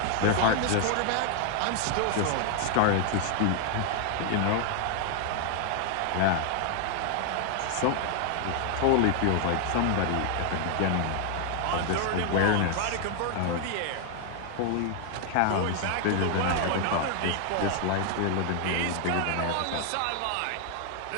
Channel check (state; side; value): different; both; correlation 0.00